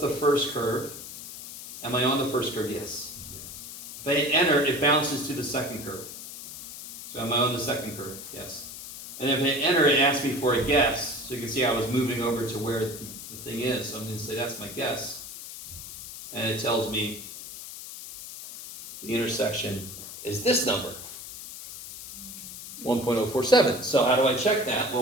first curve? Am I on the first curve? Yes. If I hit enter, it bounces to the second curve. So am I on the second curve? Yes. And if I hit enter, it asks me for a guess. So you can see I was moving over to where the thing is. So I'm going to say that's my guess. And it tells me the intersection is this number, 1.047. So how do I check that?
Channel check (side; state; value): left; noise; hiss, 11 dB below the sound